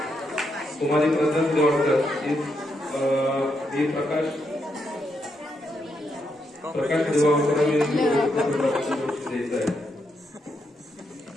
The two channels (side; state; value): both; normal; correlation 0.80